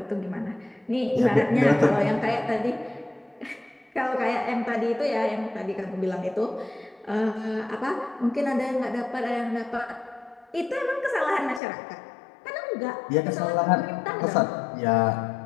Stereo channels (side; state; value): right; drops out; at 11.6 s